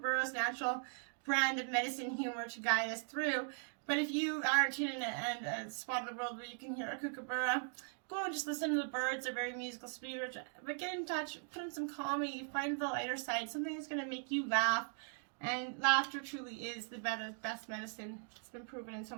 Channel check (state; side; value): silent; left; 52 dB below the other